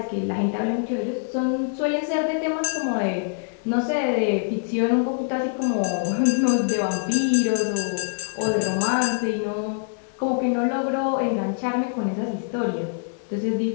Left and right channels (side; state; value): right; silent; 62 dB below the other